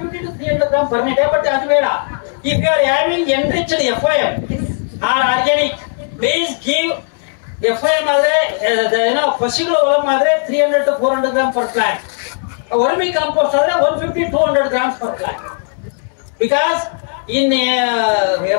to 300 grams per day, but that's better. If you are having enriched FOM or organic, please give FOM Pashilo Olam 300 to 400 grams per plant. Vermi compost 150 to 200 grams per plant. Because in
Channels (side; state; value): right; silent; digital silence